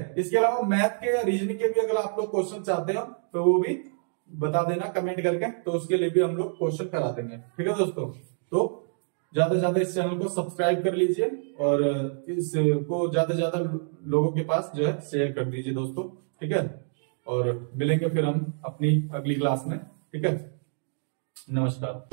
इसके अलावा मैथ के या रीजनिंग के भी अगर आप लोग क्वेश्चन चाहते हो तो वो भी बता देना कमेंट करके, तो उसके लिए भी हम लोग क्वेश्चन करा देंगे। ठीक है दोस्तों, तो ज्यादा से ज्यादा इस चैनल को सब्सक्राइब कर लीजिए और इसको ज्यादा से ज्यादा लोगों के पास जो है शेयर कर दीजिए दोस्तों। ठीक है, और मिलेंगे फिर हम अपनी अगली क्लास में। ठीक है,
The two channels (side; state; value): left; silent; digital silence